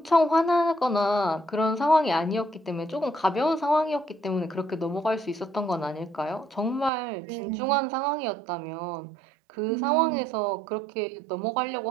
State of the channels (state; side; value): drops out; left; at 6.9 s